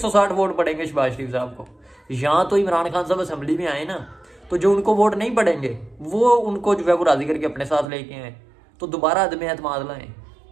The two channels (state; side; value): drops out; left; at 7.9 s